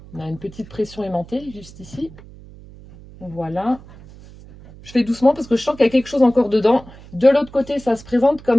On a une petite pression aimantée juste ici. Voilà. Je fais doucement parce que je sens qu'il y a quelque chose encore dedans. De l'autre côté, ça se présente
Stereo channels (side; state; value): right; noise; hum, 20 dB below the sound